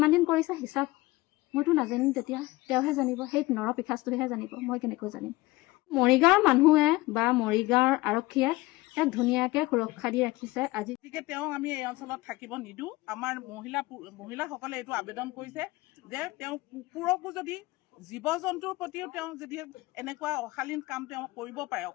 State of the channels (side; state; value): right; quieter; 20.1 dB